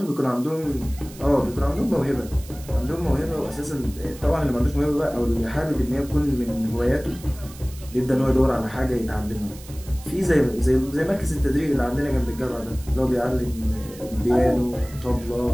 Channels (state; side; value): noise; right; hiss, 19 dB below the sound